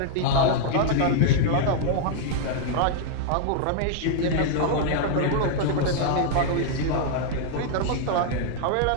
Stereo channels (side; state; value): both; different; correlation -0.01